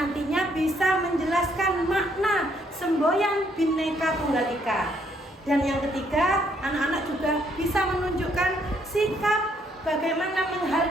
bisa menjelaskan makna semboyan Bhinneka Tunggal Ika. Dan yang ketiga, anak-anak juga bisa menunjukkan sikap bagaimana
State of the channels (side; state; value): both; normal; correlation 0.70